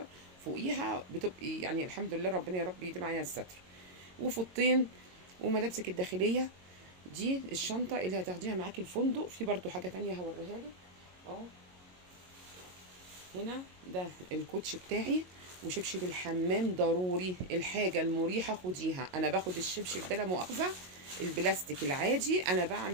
فوقيها بتبقي يعني الحمد لله، ربنا يا رب يديم علينا الستر. وفوطين. وملابسك الداخليه، دي الشنطه اللي هتاخديها معاكي الفندق. في برضو حاجه تانية هوريها لك. اه هنا ده الكوتش بتاعي، وشبشب الحمام ضروري، الحاجة المريحة خديها. انا باخد الشبشب ده لا مؤاخذة البلاستيك العادي، انا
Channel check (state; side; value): late; left; 22 ms